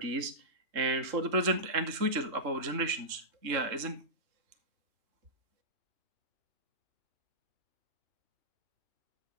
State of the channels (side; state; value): left; late; 3.6 ms